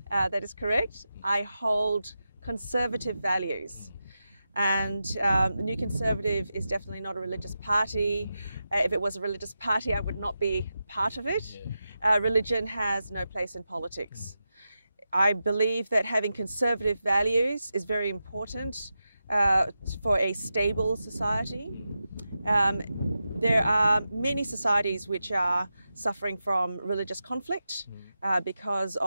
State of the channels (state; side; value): inverted; both; correlation -0.90